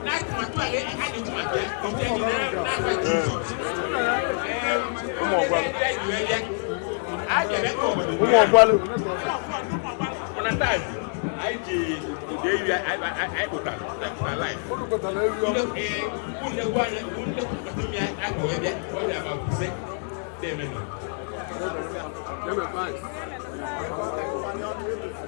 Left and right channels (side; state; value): right; silent; 60 dB below the other